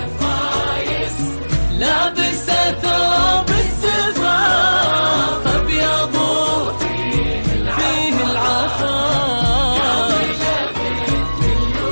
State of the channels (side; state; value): both; inverted; correlation -1.00